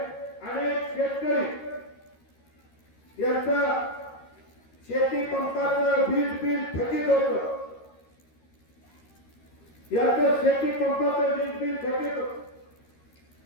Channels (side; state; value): right; late; 13 ms